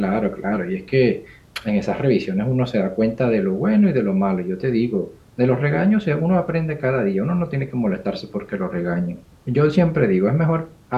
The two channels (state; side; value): identical; both; correlation 1.00